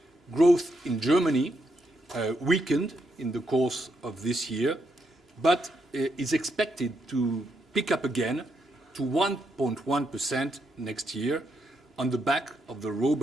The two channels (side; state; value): both; normal; correlation 0.79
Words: growth in Germany weakened in the course of this year, but is expected to pick up again to 1.1% next year on the back of the